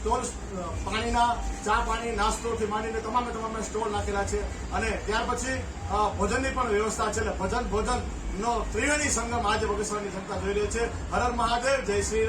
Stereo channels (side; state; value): both; identical; correlation 1.00